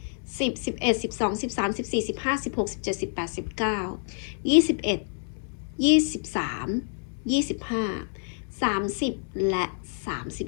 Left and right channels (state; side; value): silent; right; 60 dB below the other